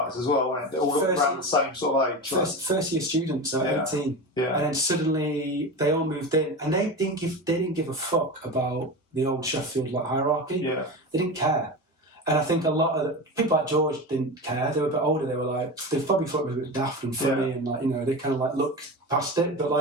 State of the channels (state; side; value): normal; both; correlation 0.25